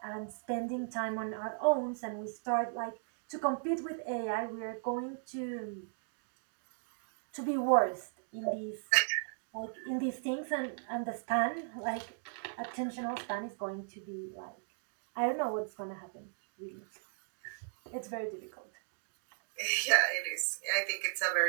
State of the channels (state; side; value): silent; left; digital silence